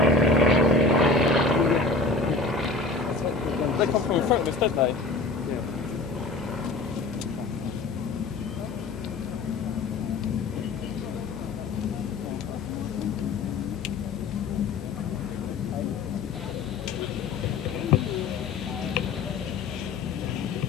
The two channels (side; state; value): right; quieter; 3.6 dB